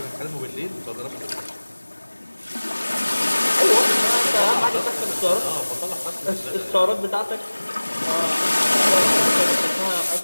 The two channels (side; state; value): both; inverted; correlation -1.00